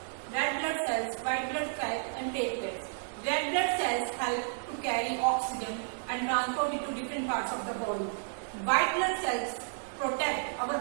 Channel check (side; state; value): left; silent; digital silence